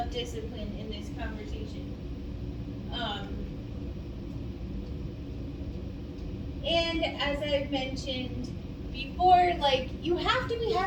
in this conversation. And as I've mentioned before, like, you have to be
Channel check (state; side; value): identical; both; correlation 1.00